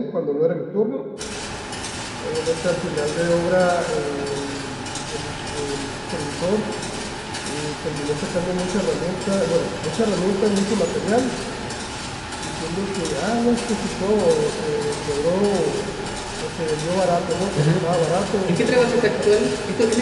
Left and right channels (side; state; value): both; identical; correlation 1.00